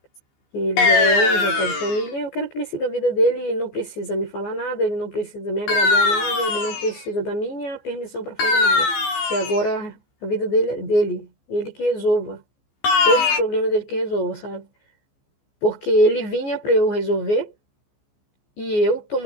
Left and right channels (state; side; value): late; right; 15 ms